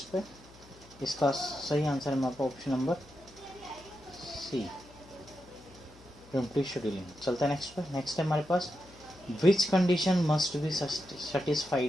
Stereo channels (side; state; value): left; noise; hum, 24 dB below the sound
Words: पे। इसका सही आंसर है हमारे पास option number C, primitive scheduling. चलते हैं नेक्स्ट पे। नेक्स्ट है हमारे पास, which condition must be